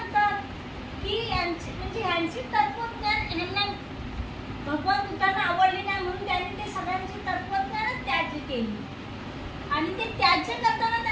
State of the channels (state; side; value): identical; both; correlation 1.00